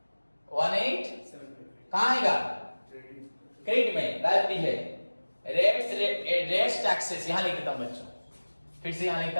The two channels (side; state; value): both; inverted; correlation -1.00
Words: कहां आएगा? क्रेडिट में, लायबिलिटी है। रेट्स टैक्सेस यहां लिख देता हूं बच्चों, फिर से यहां